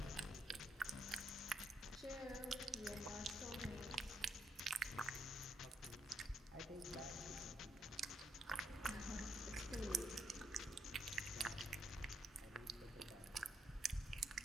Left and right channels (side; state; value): both; normal; correlation 0.76